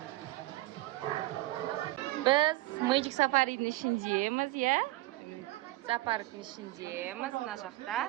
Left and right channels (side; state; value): left; quieter; 18.7 dB